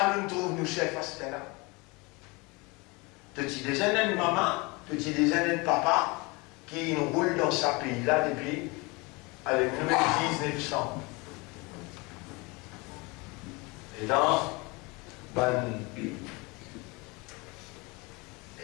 nous trouve nous chefs à ce là. Petit déjeuner de maman, petit déjeuner de papa, qui nous roule dans ce pays-là depuis le numéro 1900. Et dans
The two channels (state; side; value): quieter; right; 26.4 dB